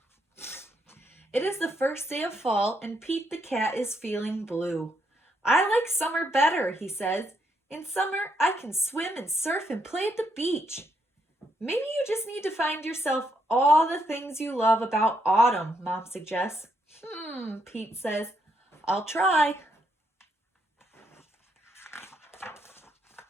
It is the first day of fall, and Pete the Cat is feeling blue. I like summer better, he says. In summer, I can swim and surf and play at the beach. Maybe you just need to find yourself all the things you love about autumn, Mom suggests. Pete says, I'll try.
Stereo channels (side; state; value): both; normal; correlation 0.76